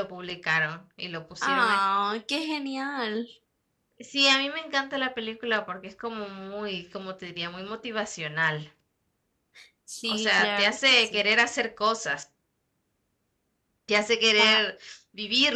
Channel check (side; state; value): both; identical; correlation 1.00